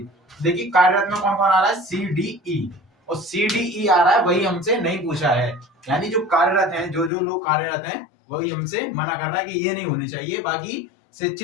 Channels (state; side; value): drops out; right; at 7.1 s